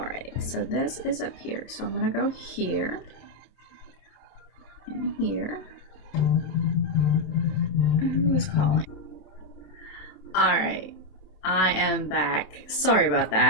so this is up here. So I'm gonna go here and here. Who is calling? Alright, I am back. Sorry about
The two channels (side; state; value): right; late; 27 ms